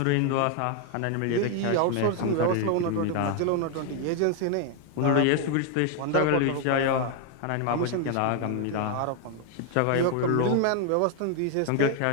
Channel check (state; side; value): different; both; correlation 0.01